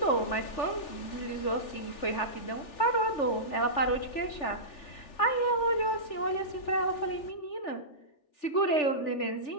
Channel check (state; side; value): late; right; 3.4 ms